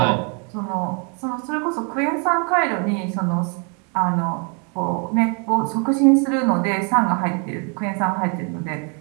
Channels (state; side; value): quieter; left; 37.1 dB